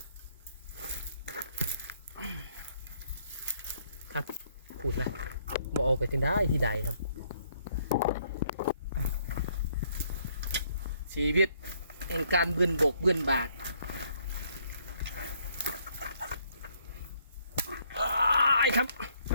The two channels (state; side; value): inverted; both; correlation -0.68